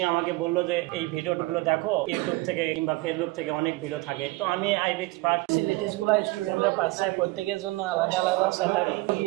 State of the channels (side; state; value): left; quieter; 22.2 dB